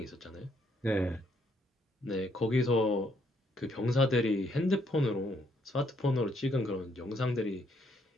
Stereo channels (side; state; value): both; normal; correlation 0.71